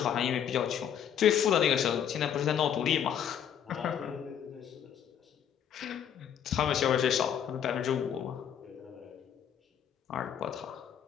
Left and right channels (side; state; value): right; quieter; 9.0 dB